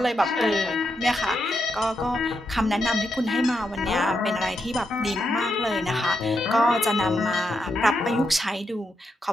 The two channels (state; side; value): normal; both; correlation 0.83